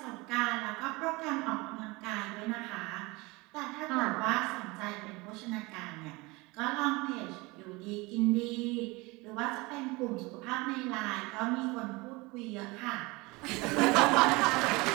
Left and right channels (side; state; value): left; quieter; 24.1 dB